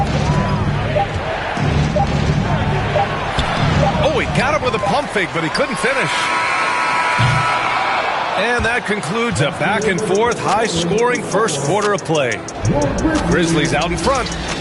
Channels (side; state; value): both; identical; correlation 1.00